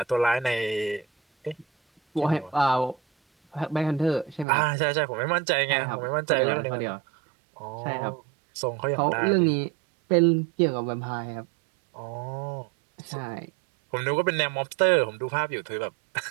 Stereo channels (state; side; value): drops out; left; at 4.5 s